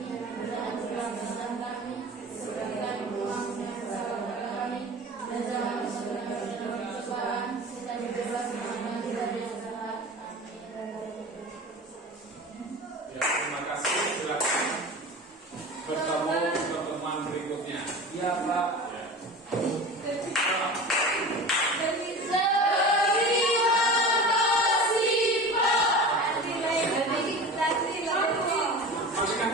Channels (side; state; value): both; normal; correlation 0.34